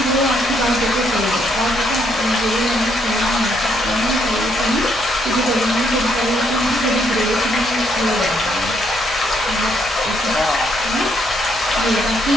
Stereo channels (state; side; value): noise; right; hum, 22 dB below the sound